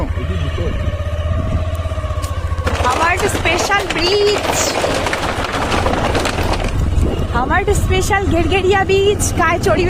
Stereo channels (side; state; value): both; identical; correlation 1.00